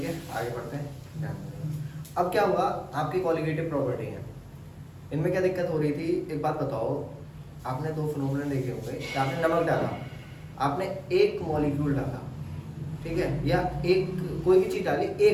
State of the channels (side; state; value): both; identical; correlation 1.00